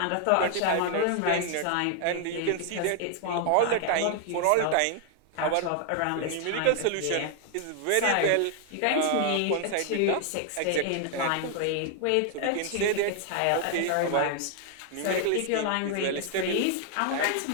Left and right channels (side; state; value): both; different; correlation 0.00